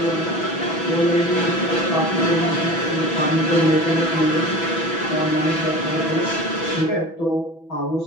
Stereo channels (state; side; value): late; right; 6.1 ms